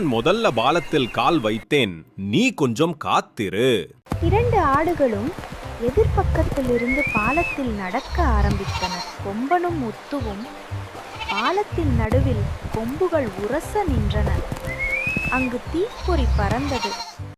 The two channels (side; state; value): both; identical; correlation 1.00